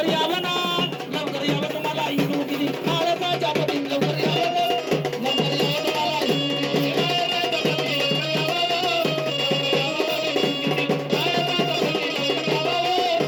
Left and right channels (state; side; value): identical; both; correlation 1.00